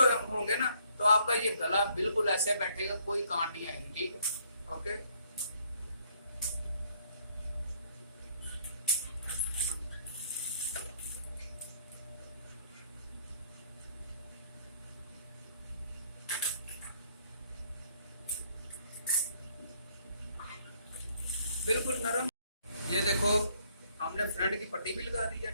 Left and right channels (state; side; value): inverted; both; correlation -0.66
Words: होंगे ना तो आपका ये गला बिल्कुल ऐसे बैठेगा, कोई कांट नहीं आएगी, ठीक है। ओके, बिल्कुल नरम। ये देखो हमने फ्रंट की पट्टी भी लगा दी है,